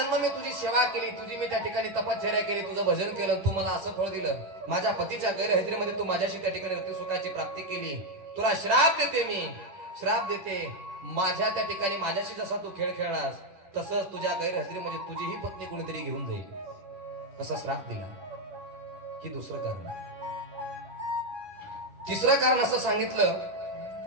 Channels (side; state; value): left; late; 11 ms